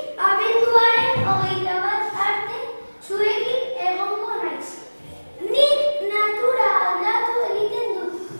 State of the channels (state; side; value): inverted; both; correlation -1.00